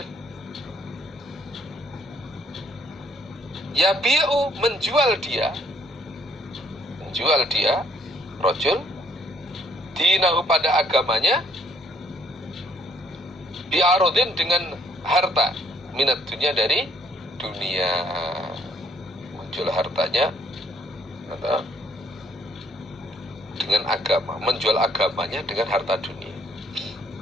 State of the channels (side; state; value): both; normal; correlation 0.64